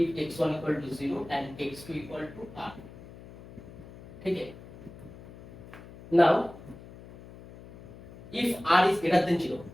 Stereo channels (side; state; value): left; noise; hum, 17 dB below the sound